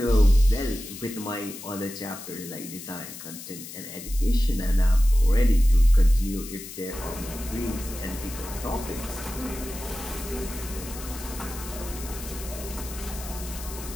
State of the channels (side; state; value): left; noise; hiss, 12 dB below the sound